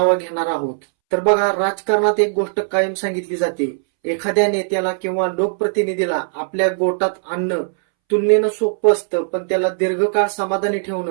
घेणार आहोत. तर बघा, राजकारणात एक गोष्ट कायम सांगितली जाते, एखाद्या नेत्याला किंवा लोकप्रतिनिधीला आपल्या गोटात आणणं तुलनेनं सोपं असतं, पण त्याला दीर्घकाळ समाधानी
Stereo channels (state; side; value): silent; left; 66 dB below the other